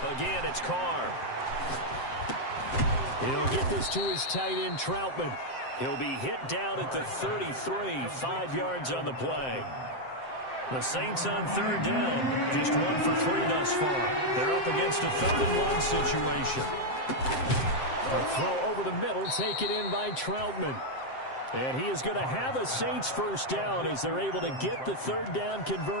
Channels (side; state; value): right; late; 7.7 ms